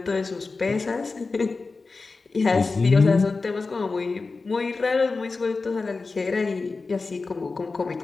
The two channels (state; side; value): quieter; right; 4.0 dB